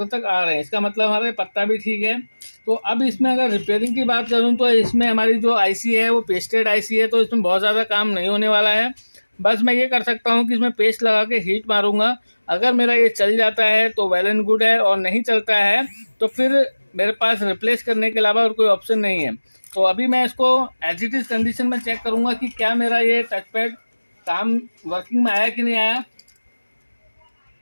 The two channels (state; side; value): inverted; both; correlation -1.00